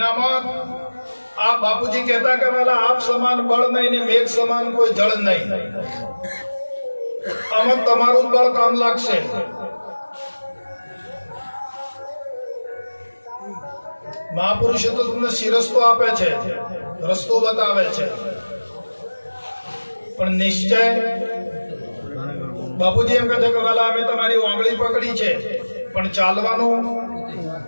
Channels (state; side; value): inverted; both; correlation -1.00